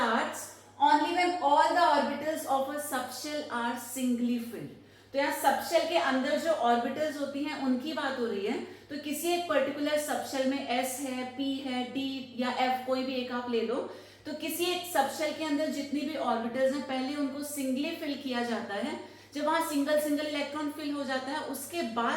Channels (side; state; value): both; identical; correlation 1.00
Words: only when all the orbitals of a subshell are singly filled. तो यहाँ सबशेल के अंदर जो ऑर्बिटल्स होती हैं उनकी बात हो रही है. तो किसी एक पर्टिकुलर सबशेल में S है, P है, D या F, कोई भी एक आप ले लो. तो किसी एक सबशेल के अंदर जितनी भी ऑर्बिटल्स हैं पहले उनको सिंगली फिल किया जाता है. जब वहां सिंगल सिंगल इलेक्ट्रॉन फिल हो जाता है उसके